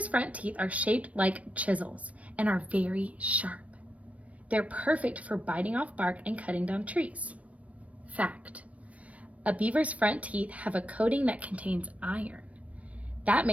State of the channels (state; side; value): late; left; 0.066 ms